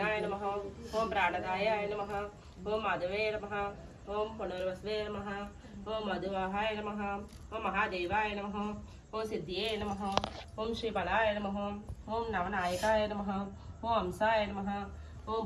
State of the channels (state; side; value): identical; both; correlation 1.00